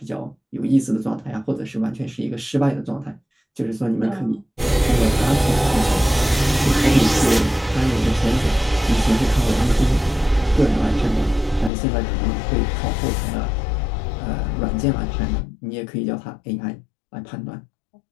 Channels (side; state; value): right; drops out; at 11.7 s